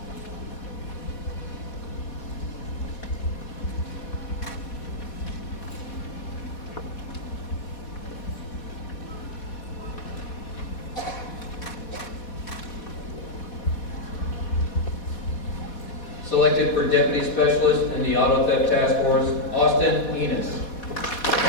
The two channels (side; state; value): right; late; 4.2 ms